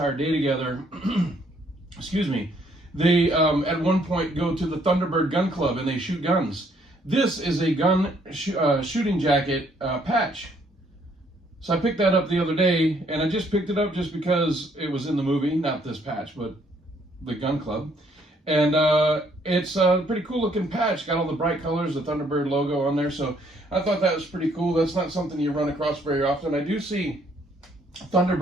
day together, excuse me, they at one point go to the Thunderbird Gun Club and they shoot guns. This is a gun shooting jacket patch. So I picked that up the other day, and I just picked it up just because it was in the movie, not this patch, but the gun club. And it's a pretty cool looking patch. Got all the bright colors, the Thunderbird logo on there. So I thought that was pretty cool. That's not something you run across very often. I do see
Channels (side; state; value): both; normal; correlation 0.67